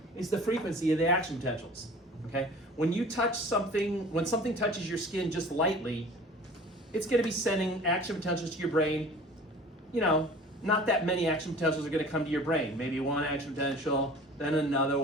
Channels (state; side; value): normal; both; correlation 0.44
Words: is the frequency of the action potentials, okay? When you touch something, when something touches your skin just lightly, it's gonna be sending action potentials to your brain. Not that many action potentials are gonna come to your brain. Maybe 1 action potential, then another